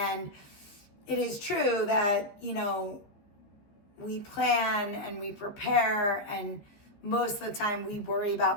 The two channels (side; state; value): right; late; 14 ms